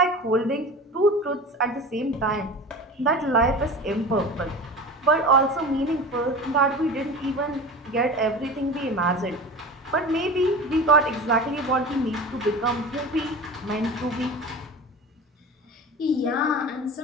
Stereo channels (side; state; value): both; normal; correlation 0.33